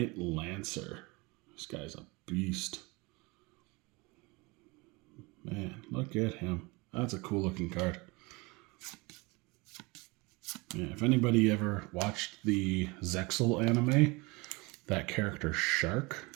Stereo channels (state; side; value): quieter; left; 25.7 dB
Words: Lancer. This guy's a beast. Man, look at him. That's a cool looking card. Yeah, if anybody ever watched the Zexal anime, that character Shark.